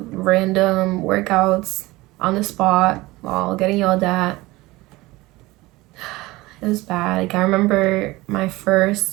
random workouts on the spot while getting yelled at. It was bad. Like I remember my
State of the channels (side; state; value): left; quieter; 20.3 dB